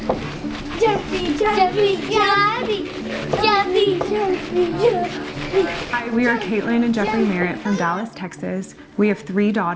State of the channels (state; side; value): identical; both; correlation 1.00